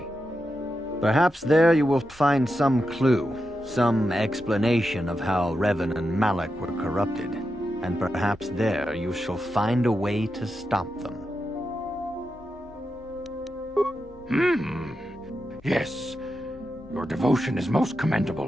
Perhaps there you will find some clue, some explanation of how Revan and Malak were corrupted, and perhaps there you shall find a way to stop them. Yes, your devotion is most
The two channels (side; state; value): both; normal; correlation 0.88